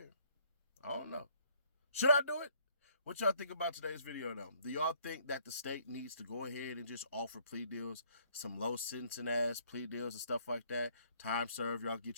I don't know. Should I do it? What y'all think about today's video though? Do y'all think that the state needs to go ahead and just offer plea deals, some low sentencing ass plea deals and stuff like that? Time served, y'all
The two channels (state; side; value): inverted; both; correlation -0.63